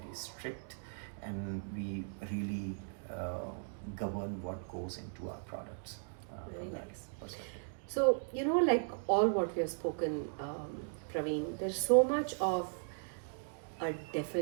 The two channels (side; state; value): left; silent; digital silence